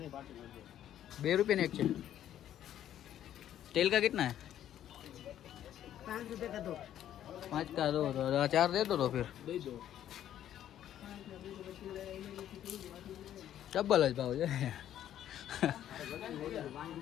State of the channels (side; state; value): right; quieter; 11.2 dB